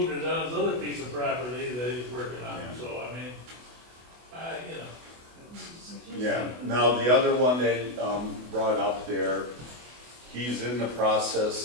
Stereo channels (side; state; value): left; late; 24 ms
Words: it on his other piece of property that he's working on, Yeah. so I mean, Yeah, now the other one that brought up there, he's in the